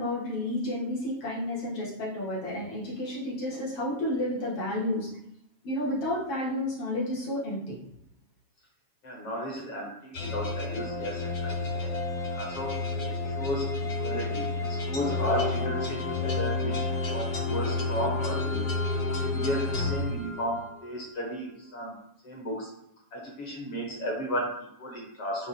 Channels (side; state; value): right; late; 7.3 ms